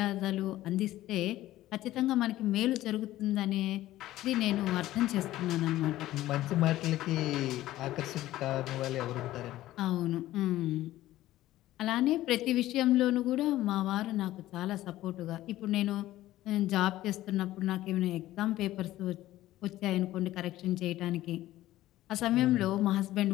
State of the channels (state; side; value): quieter; right; 15.2 dB